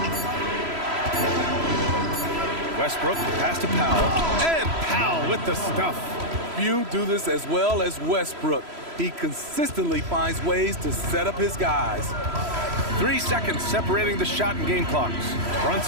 Westbrook, pass to Powell. And Powell with the stuff. Few do this as well as Westbrook. He consistently finds ways to set up his guys. 3 seconds separating the shot and game clocks.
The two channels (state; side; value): late; left; 3.0 ms